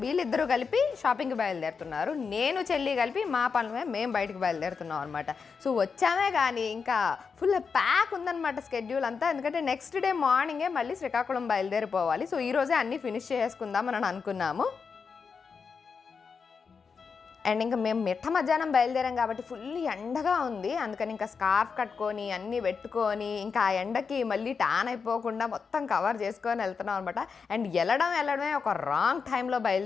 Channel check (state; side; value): quieter; right; 5.6 dB